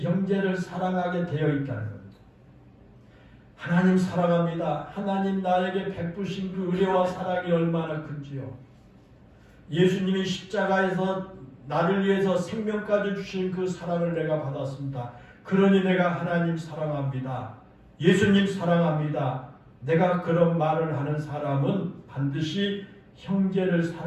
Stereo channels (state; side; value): identical; both; correlation 1.00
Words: 형제를 사랑하게 되어 있다는 겁니다. 하나님 사랑합니다. 하나님 나에게 베푸신 그 은혜와 사랑이 얼마나 큰지요. 예수님이 십자가에서 나를 위해서 생명까지 주신 그 사랑을 내가 받았습니다. 그러니 내가 하나님 사랑합니다. 예수님 사랑합니다. 내가 그런 말을 하는 사람은 반드시 형제를